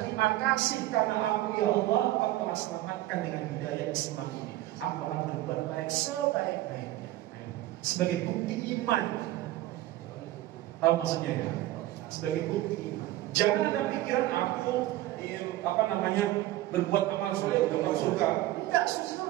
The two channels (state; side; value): quieter; left; 15.7 dB